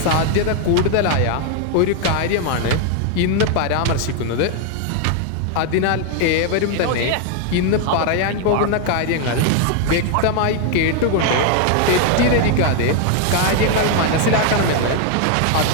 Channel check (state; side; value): different; both; correlation 0.01